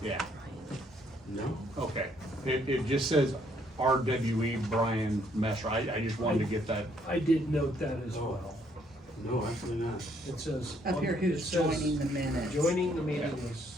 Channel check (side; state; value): both; normal; correlation 0.68